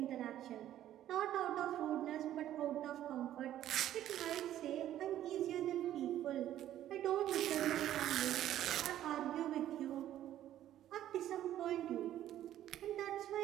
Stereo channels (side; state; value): left; quieter; 12.2 dB